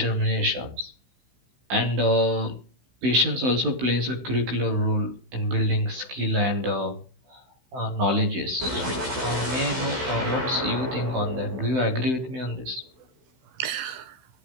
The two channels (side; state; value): left; late; 16 ms